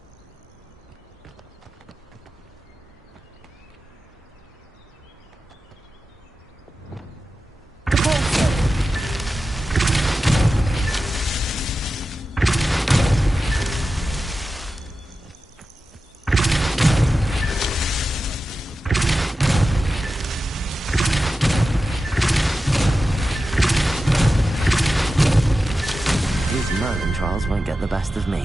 Merlin trials won't get the best of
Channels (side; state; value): both; normal; correlation 0.93